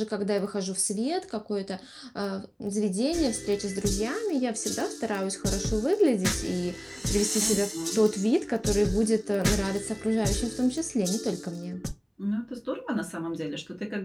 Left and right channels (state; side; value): identical; both; correlation 1.00